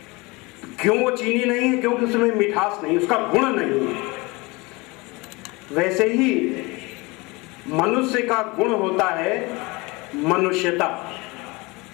क्यों वो चीनी नहीं है? क्योंकि उसमें मिठास नहीं, उसका गुण नहीं है। वैसे ही मनुष्य का गुण होता है मनुष्यता,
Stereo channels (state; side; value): quieter; right; 24.9 dB